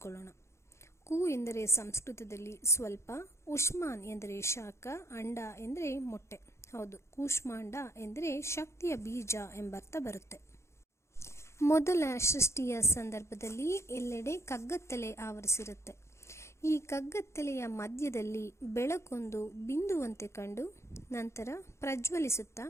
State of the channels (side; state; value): right; late; 0.13 ms